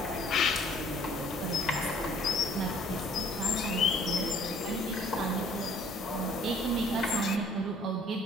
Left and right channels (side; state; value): both; normal; correlation 0.58